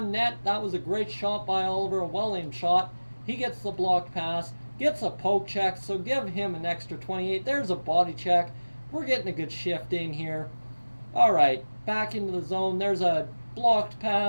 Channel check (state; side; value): inverted; both; correlation -1.00